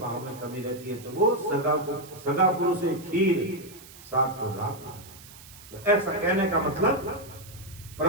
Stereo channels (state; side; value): noise; right; hiss, 19 dB below the sound